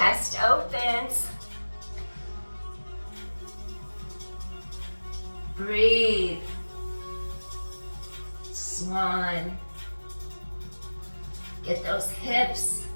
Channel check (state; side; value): inverted; both; correlation -1.00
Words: opens. Breathe. Swan. Get those hips